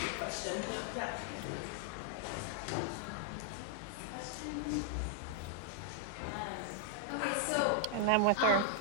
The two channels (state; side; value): different; both; correlation 0.00